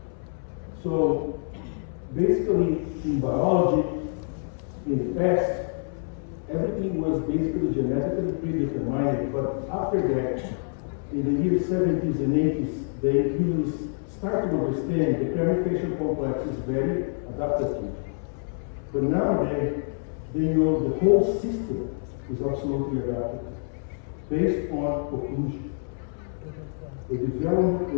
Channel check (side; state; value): right; silent; 60 dB below the other